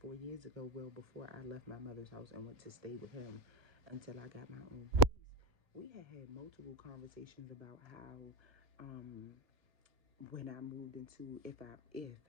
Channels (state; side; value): late; left; 1.1 ms